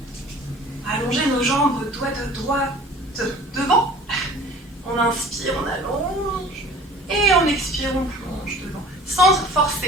Allonger nos jambes doigts de droite devant. On inspire, on allonge. Et on expire, on plonge devant. Sans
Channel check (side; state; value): both; normal; correlation 0.46